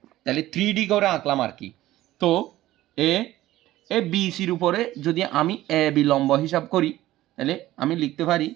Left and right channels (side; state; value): left; quieter; 15.4 dB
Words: তাহলে 3D করে আঁকলাম আর কি। তো এ বিসির উপরে যদি আমি এ বি লম্ব হিসাব করি, তাহলে আমি লিখতে পারি